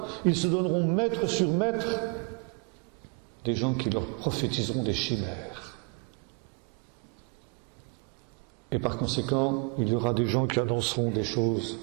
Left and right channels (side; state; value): left; quieter; 32.9 dB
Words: Ils se donneront maître sur maître des gens qui leur prophétiseront des chimères. Et par conséquent, il y aura des gens qui annonceront des choses